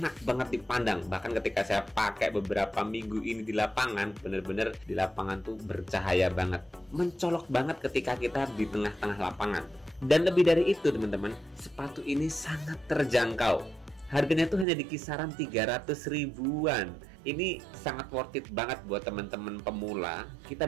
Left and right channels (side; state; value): left; drops out; at 14.7 s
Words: banget dipandang. Bahkan ketika saya pakai beberapa minggu ini di lapangan, bener-bener di lapangan tuh bercahaya banget, mencolok banget ketika kita di tengah-tengah lapangan. Dan lebih dari itu teman-teman, sepatu ini sangat terjangkau. Harganya tuh hanya di kisaran 300 ribuan. Ini sangat worth it banget buat teman-teman pemula. Kita